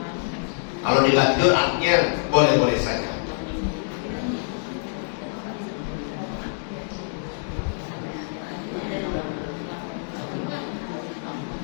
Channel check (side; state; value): right; silent; digital silence